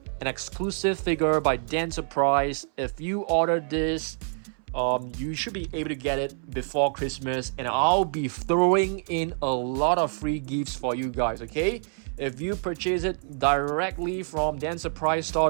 an exclusive figure by Dan Surprise. If you order this, you should be able to get it before Christmas, and I'll be throwing in a lot of free gifts for you guys, okay? If you purchase it directly from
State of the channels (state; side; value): silent; left; 60 dB below the other